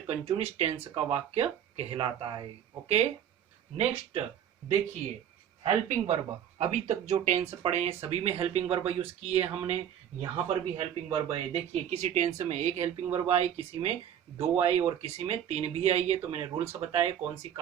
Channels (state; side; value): quieter; left; 9.6 dB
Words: टेंस का वाक्य कहलाता है। ओके, नेक्स्ट देखिए, हेल्पिंग वर्ब। अभी तक जो टेंस पढ़े हैं सभी में हेल्पिंग वर्ब यूज किए हमने। यहां पर भी हेल्पिंग वर्ब है। देखिए, किसी टेंस में एक हेल्पिंग वर्ब आई, किसी में दो आई और किसी में तीन भी आई है। तो मैंने रूल्स बताए कौन सी